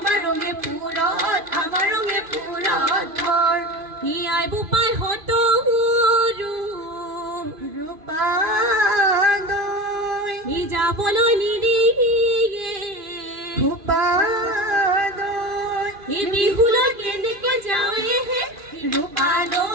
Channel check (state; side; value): late; left; 2.5 ms